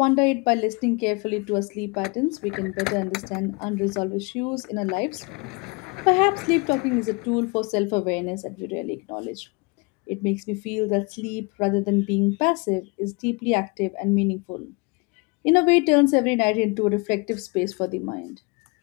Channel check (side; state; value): right; quieter; 28.9 dB